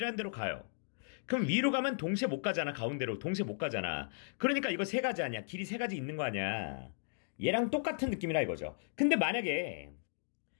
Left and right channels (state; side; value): silent; right; digital silence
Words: 데로 가요. 그럼 위로 가면 동시에 못 가잖아. 가운데로. 동시에 못 가잖아. 그러니까 이거 3가지 아니야. 길이 3가지 있는 거 아니야. 얘랑 똑같은 느낌이라 이거죠. 근데 만약에